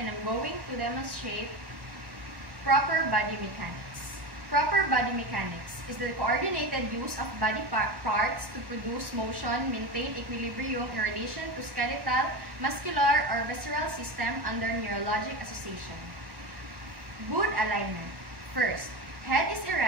I'm going to demonstrate proper body mechanics. Proper body mechanics is the coordinated use of body parts to produce motion, maintain equilibrium in relation to skeletal, muscular, or visceral system under neurologic association. Good alignment. First, head is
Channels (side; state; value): left; late; 1.2 ms